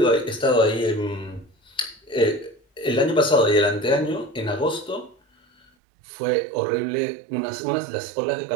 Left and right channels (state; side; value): drops out; left; at 5.7 s